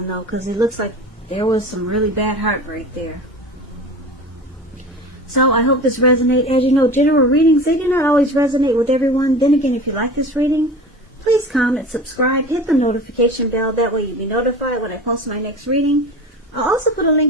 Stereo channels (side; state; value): both; normal; correlation 0.35